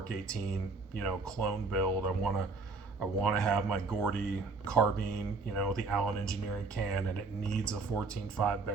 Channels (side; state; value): left; quieter; 4.0 dB